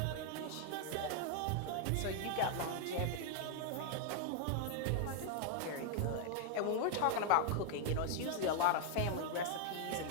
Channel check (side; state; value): both; different; correlation 0.00